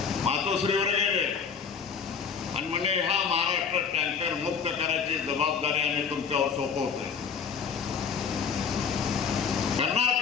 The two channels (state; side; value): quieter; right; 6.5 dB